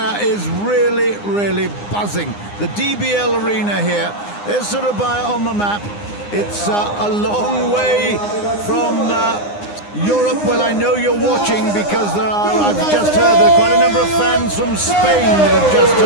is really, really buzzing. The DBL arena here. There's Surabaya on the map. It's a long way from Europe. Well, I know you're watching because I've just heard there are quite a number of fans from Spain that have just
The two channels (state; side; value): late; right; 9.8 ms